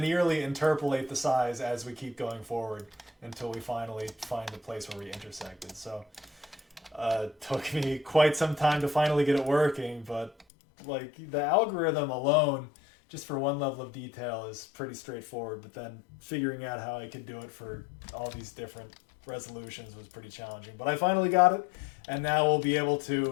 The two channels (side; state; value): right; drops out; at 10.5 s